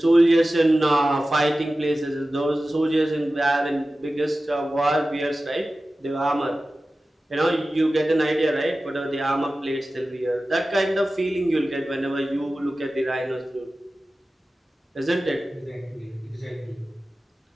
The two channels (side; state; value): both; normal; correlation 0.95